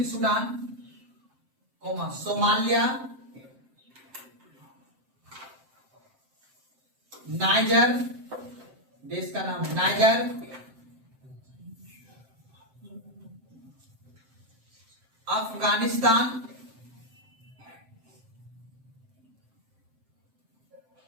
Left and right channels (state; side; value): late; left; 7.7 ms